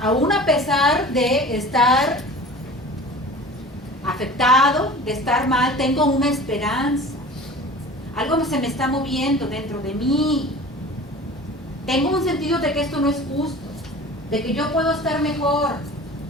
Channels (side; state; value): both; normal; correlation 0.40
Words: Aún a pesar de estar afectado, de estar mal, tengo una esperanza. Algo se me está moviendo dentro de mí. Tengo un sentido de que esto no es justo, de que yo puedo estar mejor.